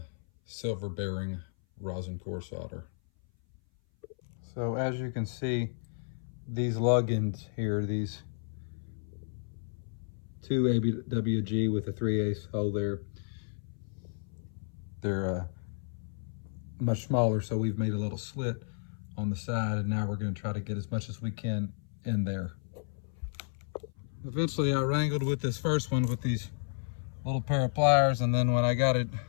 silver bearing rosin core solder. So as you can see, these lug ends here, these 2 ABWG with a 3/8 hole there, they're much smaller, so we've made a little slit on the side, and now we're going to try to get as much as we can in there. Eventually I wrangled with this first one with these little pair of pliers, and then when I got it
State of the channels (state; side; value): silent; right; 56 dB below the other